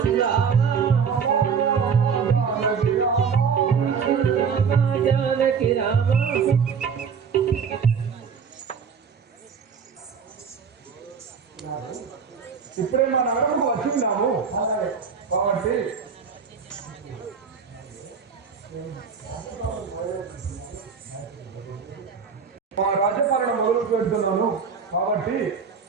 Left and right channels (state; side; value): quieter; left; 6.1 dB